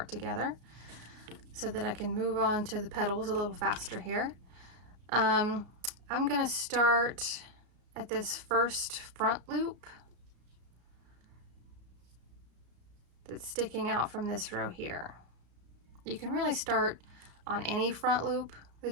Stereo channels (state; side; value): late; left; 33 ms